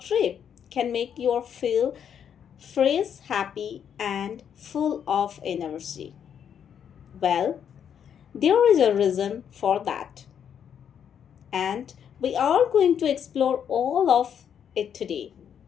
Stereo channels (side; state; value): right; quieter; 8.4 dB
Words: trip can make you feel fresh, happy, and full of energy. Well, there is a reason for that, and we are going to explore all of it today.